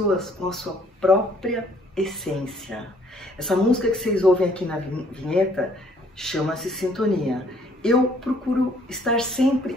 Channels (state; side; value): normal; both; correlation 0.62